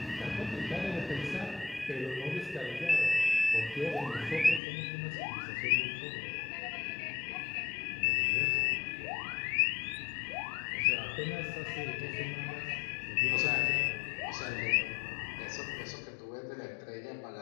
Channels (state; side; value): drops out; right; at 4.6 s